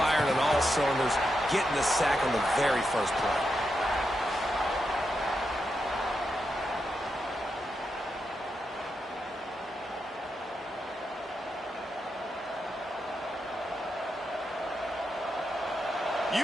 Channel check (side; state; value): both; normal; correlation 0.85